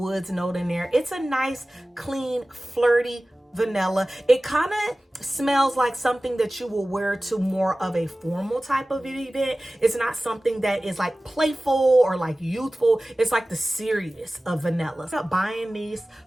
note in there. It's a nice, clean, flirty vanilla. It kind of smells like something that you will wear to more of a formal type of event. It's not something that is like playful or like youthful. It's like the serious of vanilla. I'm buying these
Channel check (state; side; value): normal; both; correlation 0.97